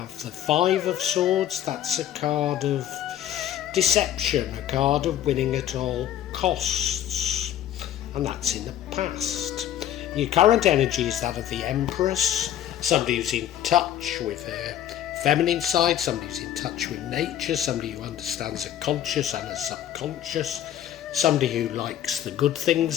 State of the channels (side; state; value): right; quieter; 11.3 dB